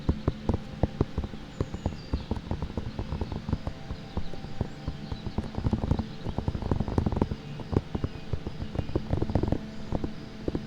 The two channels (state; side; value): identical; both; correlation 1.00